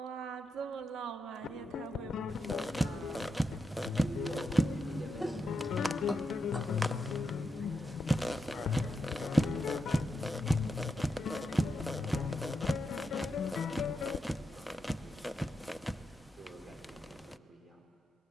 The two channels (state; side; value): normal; both; correlation 0.85